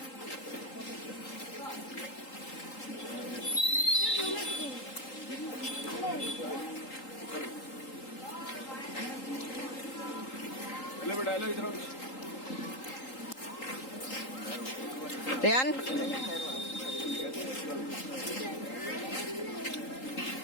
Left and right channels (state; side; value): late; right; 3.8 ms